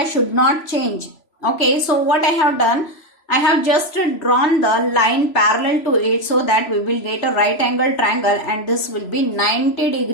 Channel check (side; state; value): right; late; 3.0 ms